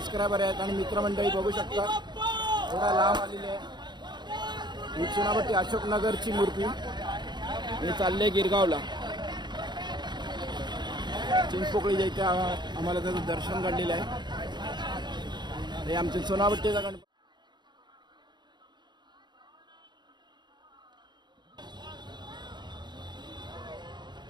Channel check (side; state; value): left; late; 0.21 ms